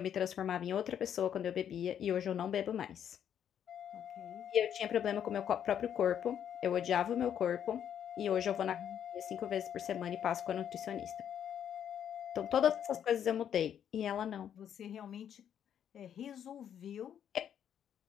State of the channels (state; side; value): quieter; right; 9.2 dB